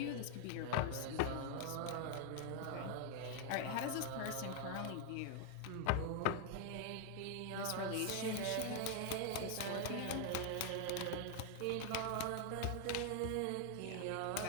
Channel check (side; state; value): both; different; correlation 0.00